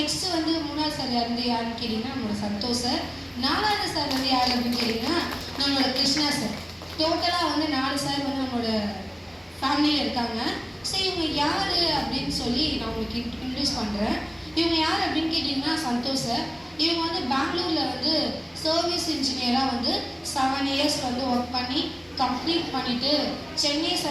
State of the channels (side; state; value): both; identical; correlation 1.00